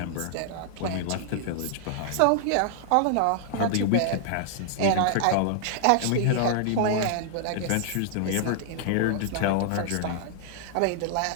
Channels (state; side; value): different; both; correlation 0.00